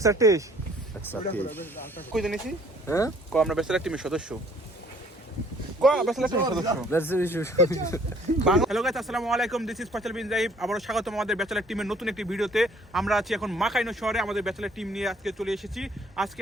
টেস্ট te. কই জানিছি Eh? কো আমরা ব্যাচেলার টিমের সদস্য কো ব্যাচেলার টিমের সদস্য হ্যালো গাইস আসসালামু আলাইকুম this is Faisal bin jibe আবারো স্বাগতম আমাদের ব্যাচেলার টিমের নতুন একটি ভিডিওতে আমরা আছি এখন মাকাইনো শহরে আমাদের ব্যাচেলার টিম নিয়ে আজকে চলে এসেছি আজকে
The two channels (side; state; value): both; normal; correlation 0.59